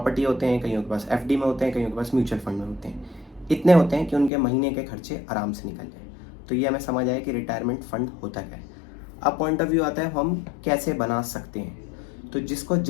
होते हैं, कईयों के पास एफडी में होते हैं, कईयों के पास म्यूचुअल फंड में होते हैं। इतने होते हैं कि उनके महीने के खर्चे आराम से निकल जाए। तो ये हमें समझ आए कि रिटायरमेंट फंड होता क्या है। अब पॉइंट ऑफ व्यू आता है हम कैसे बना सकते हैं। तो जिसको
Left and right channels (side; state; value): right; drops out; at 4.3 s